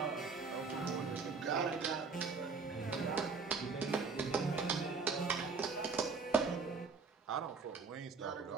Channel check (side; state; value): left; quieter; 4.7 dB